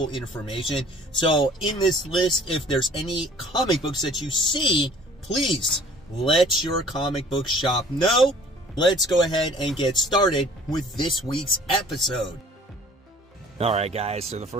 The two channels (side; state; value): both; normal; correlation 0.52